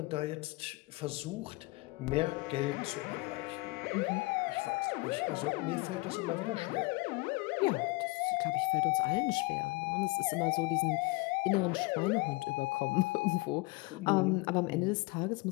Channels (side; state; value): right; quieter; 24.3 dB